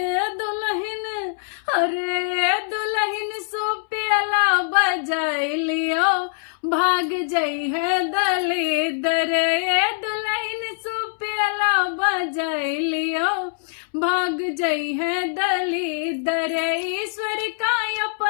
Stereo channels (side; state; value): right; silent; 63 dB below the other